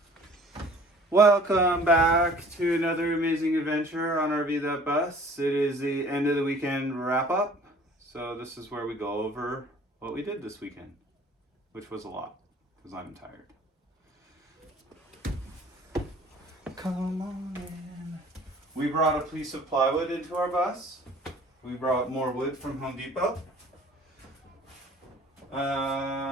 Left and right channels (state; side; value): normal; both; correlation 0.51